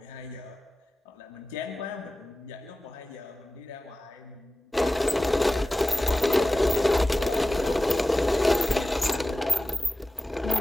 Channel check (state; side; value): normal; both; correlation 0.96